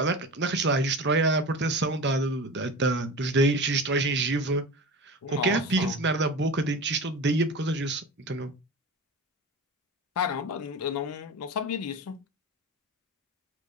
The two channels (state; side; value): normal; both; correlation 0.30